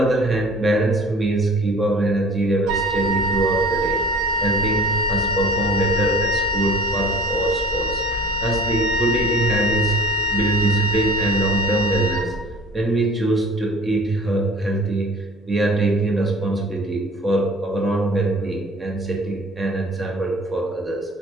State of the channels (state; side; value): normal; both; correlation 0.46